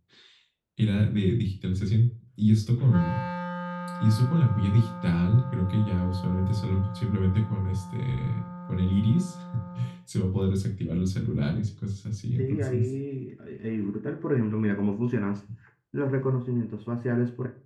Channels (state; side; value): identical; both; correlation 1.00